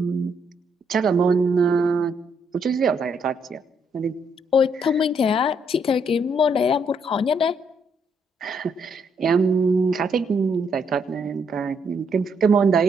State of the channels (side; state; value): both; normal; correlation 0.73